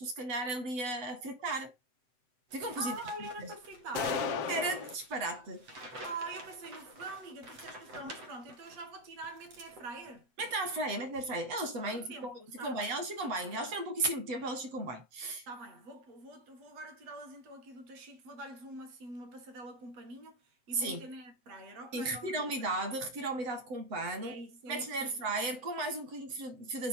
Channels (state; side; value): late; left; 8.0 ms